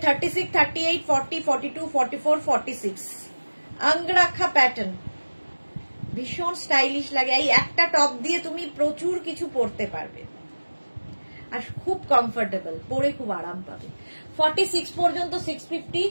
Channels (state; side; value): inverted; both; correlation -1.00